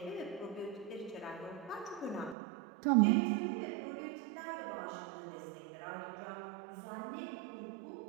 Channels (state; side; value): drops out; left; at 2.4 s